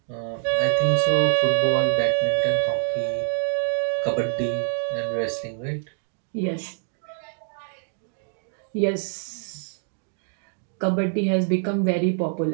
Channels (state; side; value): silent; left; digital silence